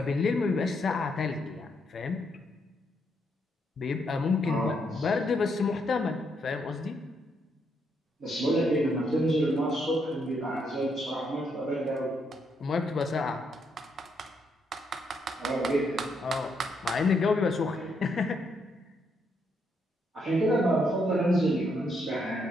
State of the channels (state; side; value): normal; both; correlation 0.76